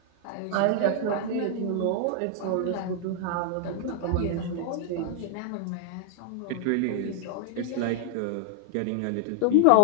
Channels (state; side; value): different; both; correlation 0.00